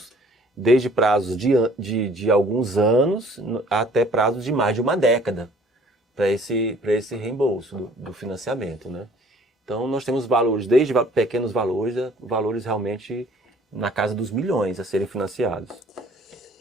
desde prazos de alguns anos até prazos de mais de uma década para esse reembolso do financiamento, né? Então nós temos valores, desde pequenos valores, valores realmente na casa dos milhões a serem financiados.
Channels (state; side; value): normal; both; correlation 0.56